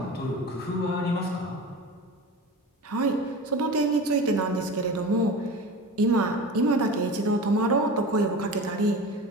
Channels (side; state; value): both; normal; correlation 0.33